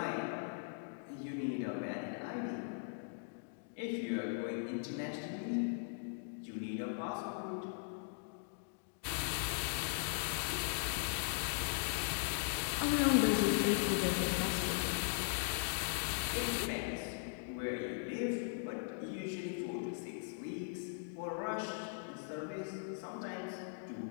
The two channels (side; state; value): right; silent; digital silence